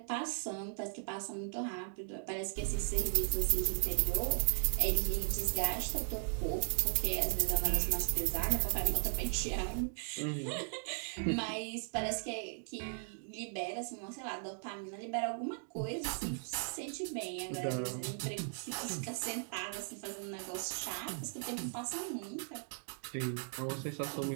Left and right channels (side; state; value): left; silent; digital silence